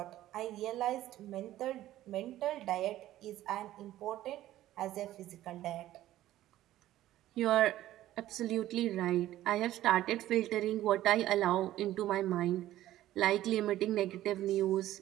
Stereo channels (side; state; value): left; quieter; 14.1 dB